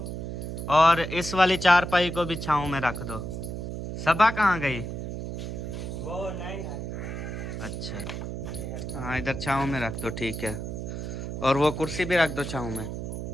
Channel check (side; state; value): right; noise; hum, 6 dB below the sound